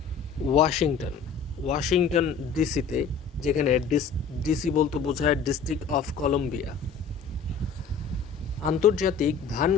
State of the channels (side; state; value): right; quieter; 5.8 dB